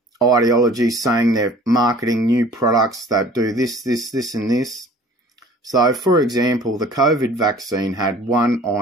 ideologies, saying they're marketing new products that do this, and this. So, for example, the COVID vaccine had 1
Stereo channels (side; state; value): both; normal; correlation 0.48